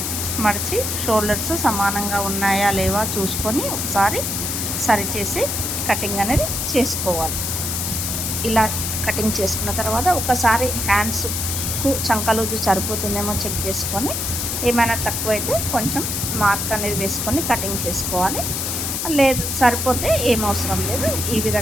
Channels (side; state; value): left; noise; hiss, 2 dB below the sound